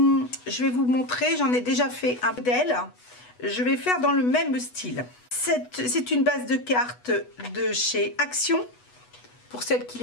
vais vous montrer, j'en ai déjà fait un modèle, je vais faire dans le même style. C'est une base de cartes de chez Action, pour celles qui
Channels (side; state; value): right; late; 8.2 ms